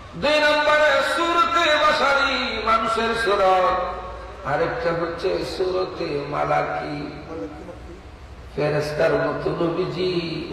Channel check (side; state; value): both; identical; correlation 1.00